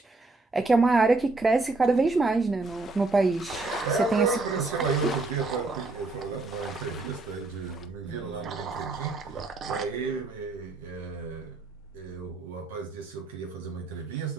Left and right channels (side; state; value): left; quieter; 3.4 dB